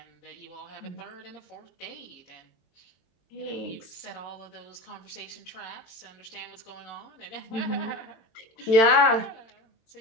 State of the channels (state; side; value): late; right; 22 ms